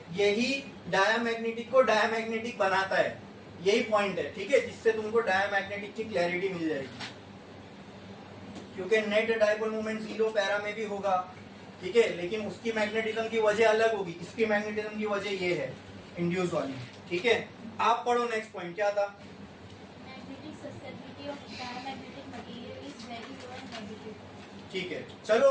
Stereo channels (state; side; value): identical; both; correlation 1.00